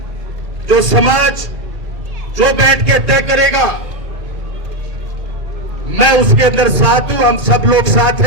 जो समाज, जो बैठ के तय करेगा, मैं उसके अंदर साथ हूं, हम सब लोग साथ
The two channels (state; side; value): late; left; 2.4 ms